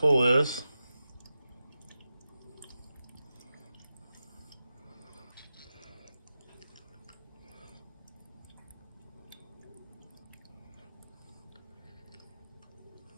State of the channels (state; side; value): inverted; both; correlation -0.92